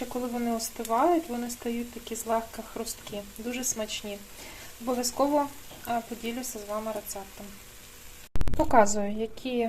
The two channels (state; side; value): identical; both; correlation 1.00